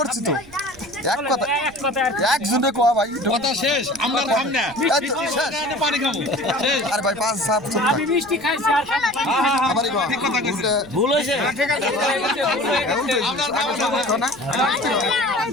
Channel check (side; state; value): right; noise; rumble, 23 dB below the sound